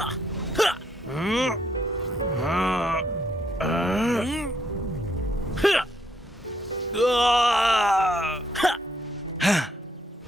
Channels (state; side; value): normal; both; correlation 0.73